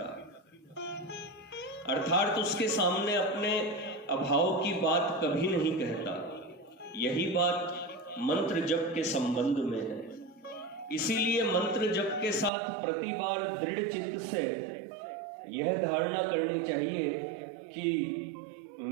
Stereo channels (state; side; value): drops out; left; at 12.5 s